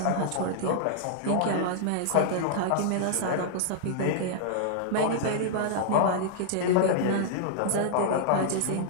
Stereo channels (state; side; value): different; both; correlation -0.01